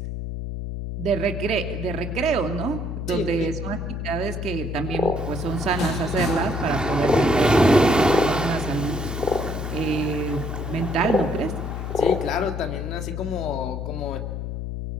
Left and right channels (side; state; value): left; noise; hum, 5 dB below the sound